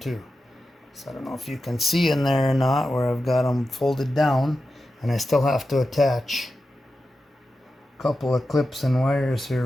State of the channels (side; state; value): both; normal; correlation 0.91